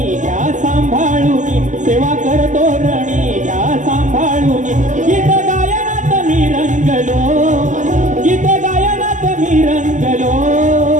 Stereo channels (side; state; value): left; late; 0.37 ms